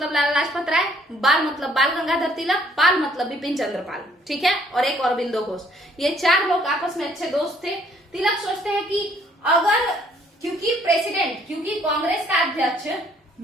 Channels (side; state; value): both; normal; correlation 0.63